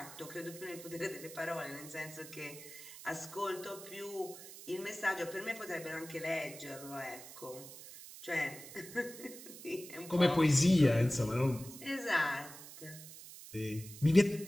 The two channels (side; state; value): right; noise; hiss, 14 dB below the sound